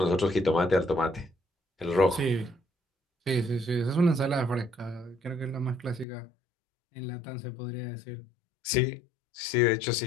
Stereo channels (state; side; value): drops out; right; at 6.1 s